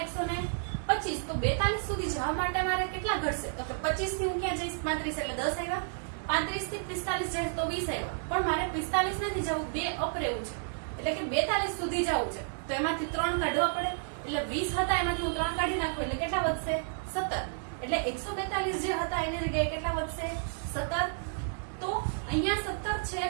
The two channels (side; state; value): left; silent; digital silence